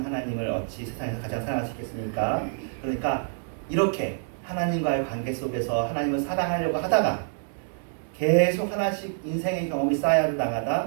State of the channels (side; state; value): left; silent; digital silence